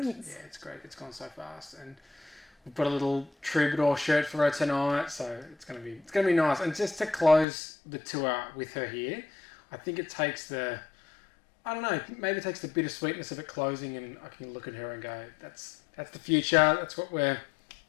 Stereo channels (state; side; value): drops out; right; at 7.5 s